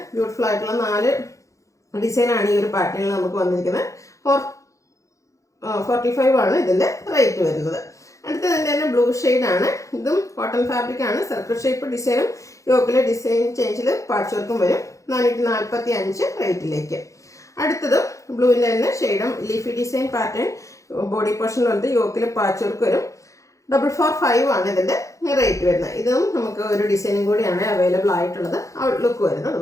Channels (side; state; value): right; late; 0.15 ms